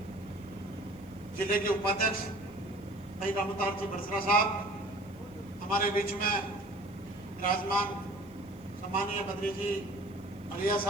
जिले के उपाध्यक्ष भाई रामतार जी बरसरा साहब, हमारे बीच में विराजमान सम्मानीय बद्री जी अलिया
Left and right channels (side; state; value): right; noise; hiss, 29 dB below the sound